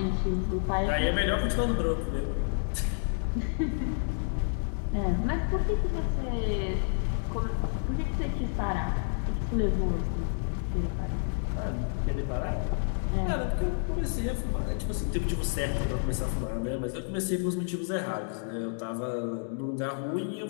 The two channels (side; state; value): right; silent; digital silence